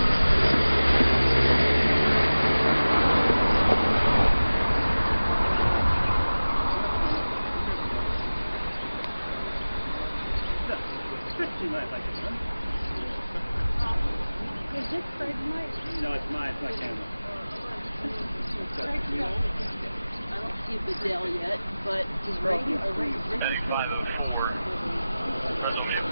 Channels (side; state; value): both; inverted; correlation -0.98